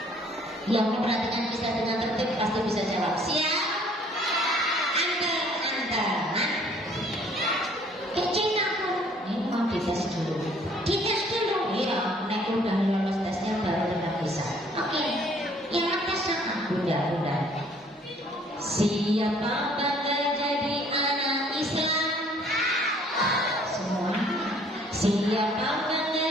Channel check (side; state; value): both; normal; correlation 0.59